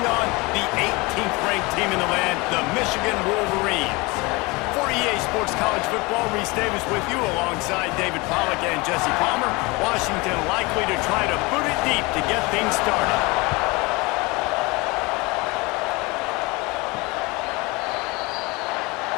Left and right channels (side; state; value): right; quieter; 25.0 dB